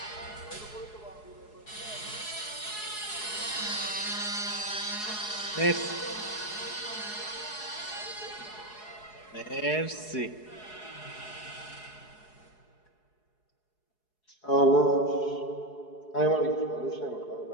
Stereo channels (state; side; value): late; right; 4.7 ms